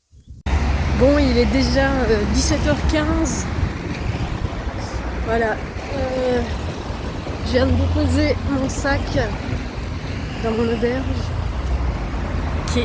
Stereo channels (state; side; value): identical; both; correlation 1.00